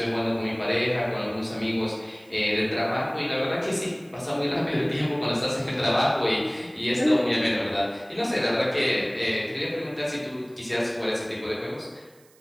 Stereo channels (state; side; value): noise; right; hiss, 29 dB below the sound